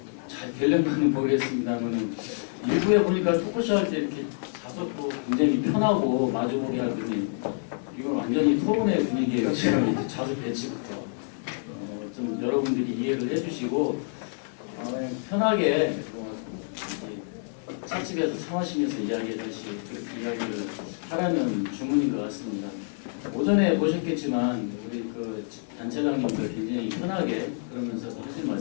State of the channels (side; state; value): right; silent; 60 dB below the other